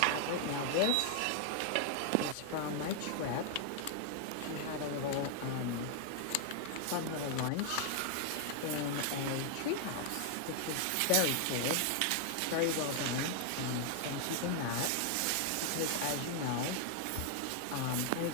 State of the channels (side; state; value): both; different; correlation 0.00